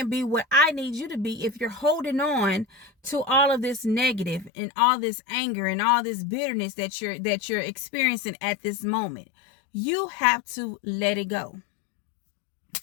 be what I need you to be if you're holding on to all of this negative and all this anger and all this bitterness that you're experiencing at this moment. You have to let it go.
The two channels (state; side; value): drops out; right; at 4.5 s